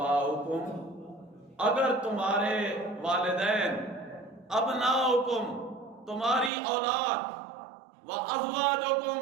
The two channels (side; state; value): left; drops out; at 6.5 s